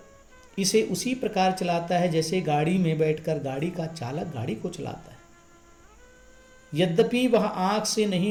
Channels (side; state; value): both; identical; correlation 1.00